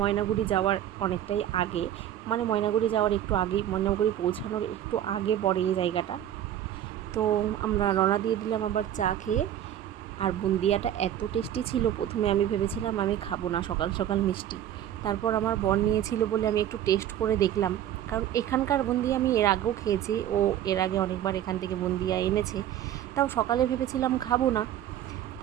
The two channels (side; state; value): left; quieter; 11.2 dB